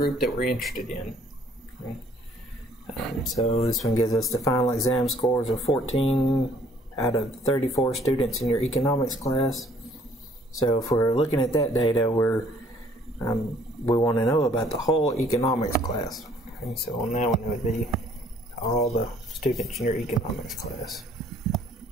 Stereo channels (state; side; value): normal; both; correlation 0.60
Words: that we're interested in. So this one gives us the final exam scores of 14 out of 34 students in your economics class. So if we're looking at that data, we want to know about the whole economics class. Okay, so on that one it would be all the students in your economics class.